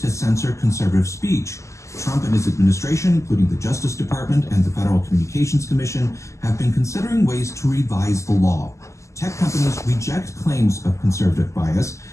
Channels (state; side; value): late; right; 0.14 ms